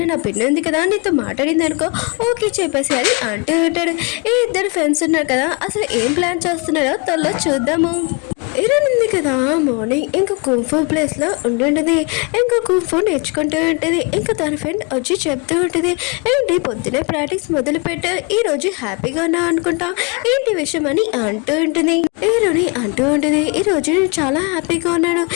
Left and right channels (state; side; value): quieter; right; 31.8 dB